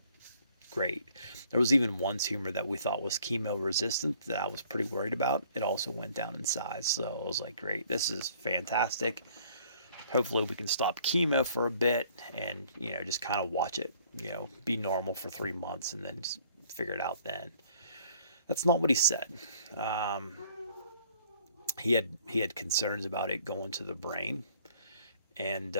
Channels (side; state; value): both; inverted; correlation -0.58